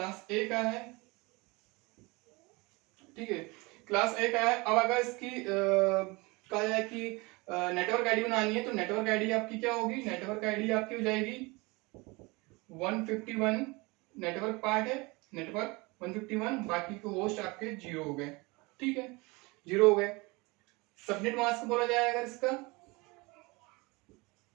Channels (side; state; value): left; quieter; 25.2 dB